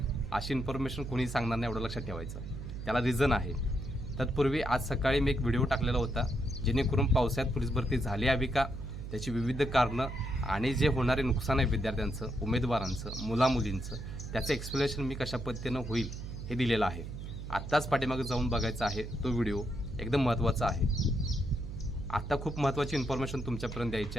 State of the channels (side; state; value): right; noise; hum, 8 dB below the sound